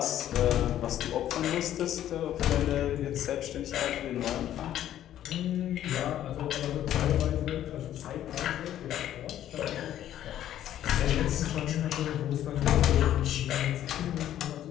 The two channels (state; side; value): quieter; right; 11.8 dB